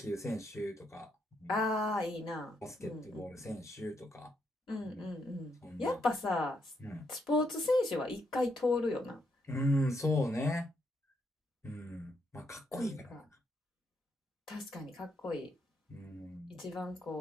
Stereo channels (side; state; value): both; normal; correlation 0.78